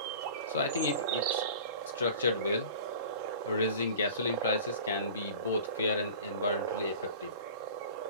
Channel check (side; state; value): both; inverted; correlation -0.41